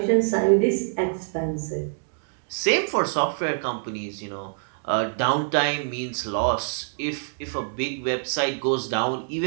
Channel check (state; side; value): silent; left; digital silence